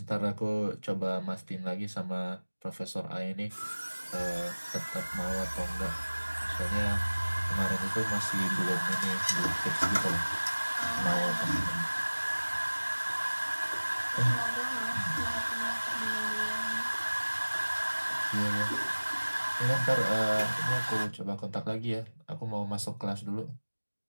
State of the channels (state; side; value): inverted; both; correlation -1.00